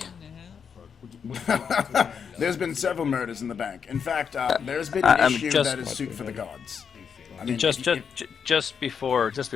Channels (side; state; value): right; quieter; 6.8 dB